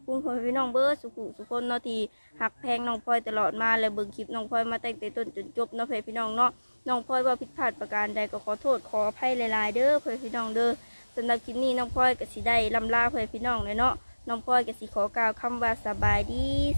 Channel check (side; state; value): both; inverted; correlation -1.00